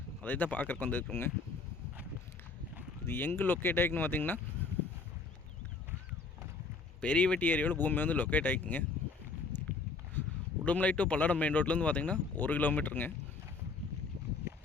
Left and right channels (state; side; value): quieter; right; 4.2 dB